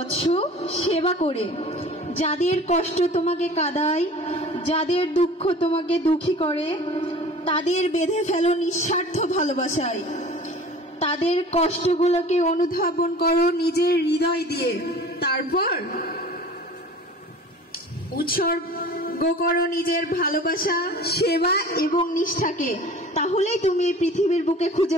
সেবা করে। যাদের কষ্ট তোমাকে কাঁদায়, যাদের দুঃখ তোমাকে দুঃখী করে, তাদের বেঁধে ফেলো নিঃস্বার্থ ভালোবাসায়। তাদের কষ্টগুলোকে অনুধাবন করো নিজের হৃদয় দিয়ে। তারপর উৎসর্গ করো নিজের ভালোবাসা, সেবা এবং নিষ্ঠাকে। তাহলেই তুমি এই পৃথিবীর বুকে খুঁজে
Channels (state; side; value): normal; both; correlation 0.43